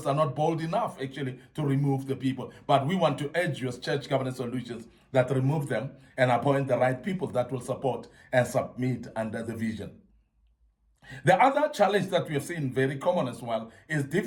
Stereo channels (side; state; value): both; identical; correlation 1.00